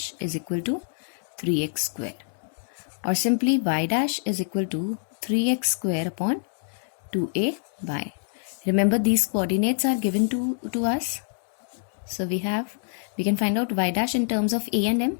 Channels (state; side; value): silent; right; digital silence